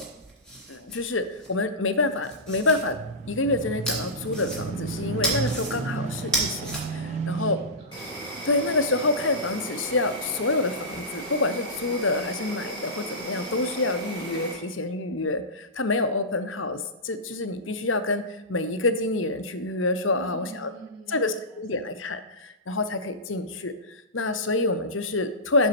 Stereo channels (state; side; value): normal; both; correlation -0.18